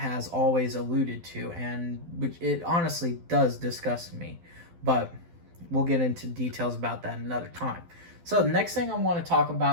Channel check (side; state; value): left; late; 12 ms